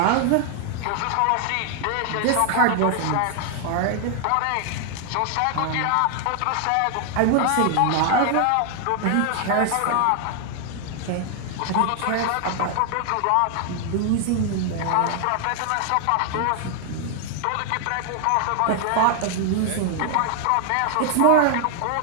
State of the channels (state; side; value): different; both; correlation 0.00